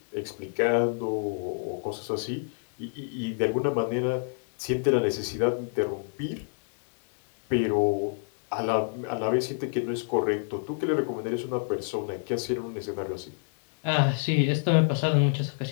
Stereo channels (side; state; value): right; silent; digital silence